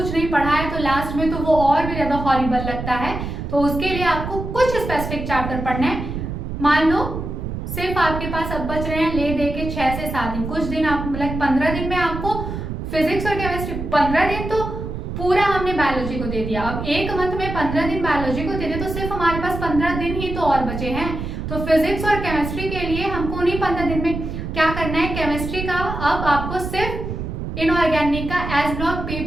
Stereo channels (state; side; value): noise; right; rumble, 6 dB below the sound